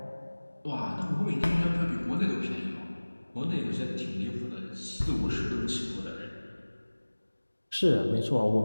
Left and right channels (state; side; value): inverted; both; correlation -1.00